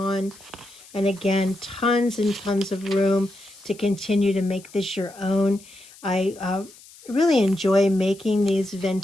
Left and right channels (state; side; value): noise; left; hiss, 22 dB below the sound